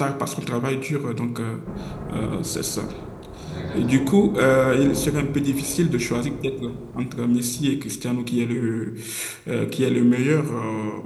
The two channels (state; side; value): identical; both; correlation 1.00